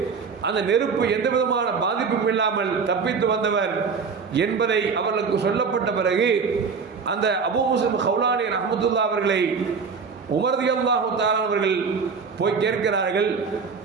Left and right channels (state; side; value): quieter; left; 5.4 dB